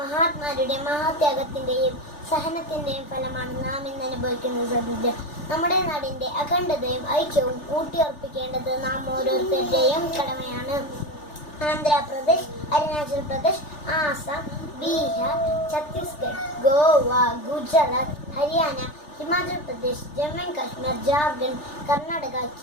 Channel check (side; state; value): right; late; 3.4 ms